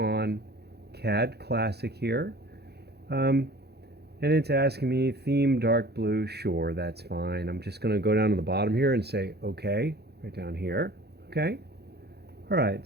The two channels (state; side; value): late; left; 0.48 ms